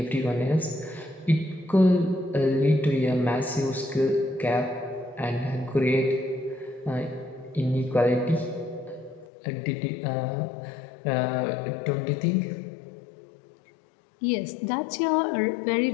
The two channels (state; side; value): drops out; right; at 9.2 s